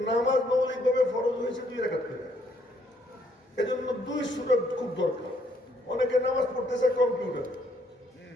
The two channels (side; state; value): both; normal; correlation 0.69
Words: নামাজ মৌলিকভাবে ফরজ হয়েছে 2 রাকাত করে, এজন্য 2 সূরা খুব দরকার। অনেকে নামাজ পড়তেছে